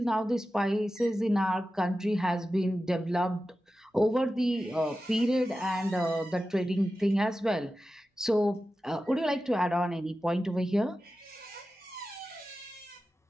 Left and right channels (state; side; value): normal; both; correlation 0.93